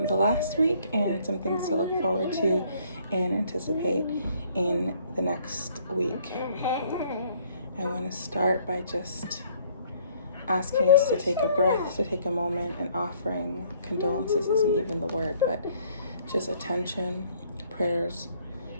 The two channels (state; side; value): inverted; both; correlation -0.62